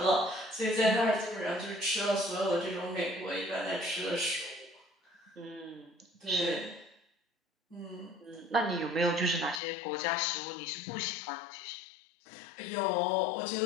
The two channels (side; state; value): right; drops out; at 9.6 s